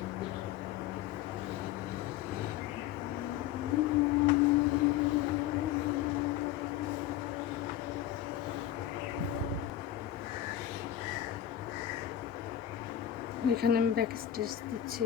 এখানে আমি ব্যাক স্টিচ দিচ্ছি,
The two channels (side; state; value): right; quieter; 11.6 dB